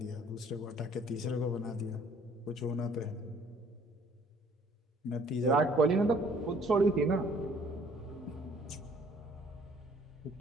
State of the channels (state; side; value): normal; both; correlation 0.58